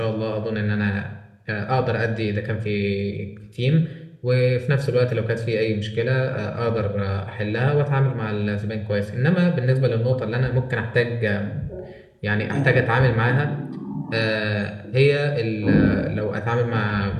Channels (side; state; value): both; identical; correlation 1.00